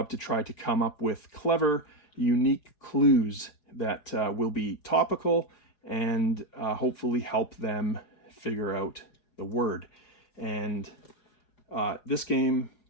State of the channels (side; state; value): right; late; 4.8 ms